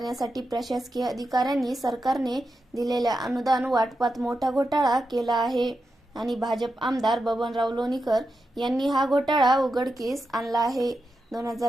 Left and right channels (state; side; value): normal; both; correlation 0.88